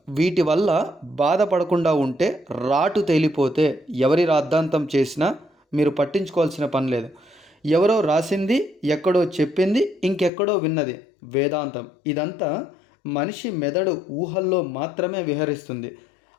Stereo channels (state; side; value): drops out; right; at 10.3 s